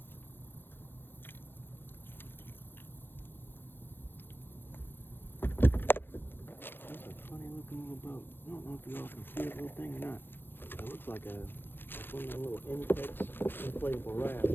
That's a funny looking little boat. I don't know if y'all can see that little thing or not. It looks like one of the little inflatable rafts, I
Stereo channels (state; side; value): late; right; 0.10 ms